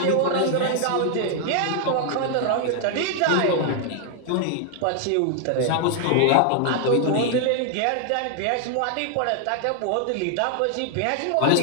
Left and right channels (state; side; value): different; both; correlation 0.00